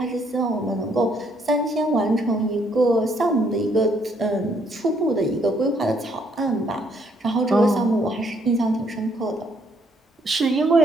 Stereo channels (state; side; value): normal; both; correlation 0.69